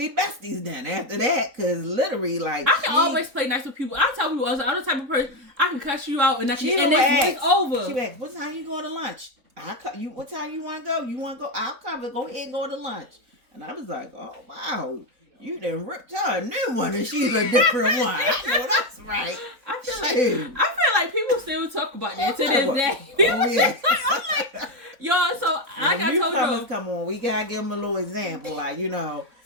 besties then after that. Because literally, like, I can always play nice with people. I tell people, I'm the type of person, I can cuss you out and it's over. She asked, "What time you going to lunch?" What time you want to go? You want to go? I'll cover. Go ahead and go to lunch. And I was like, "Oh, wow. You done ripped her a new one, and she's a different one." I know that's right. I feel like people still talk about that to this day. I'm like, y'all. So like I told you, come on, we gotta give them a little example. Like,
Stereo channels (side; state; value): left; late; 3.9 ms